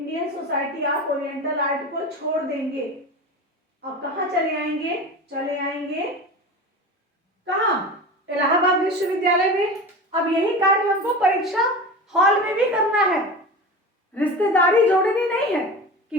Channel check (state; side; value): normal; both; correlation 0.30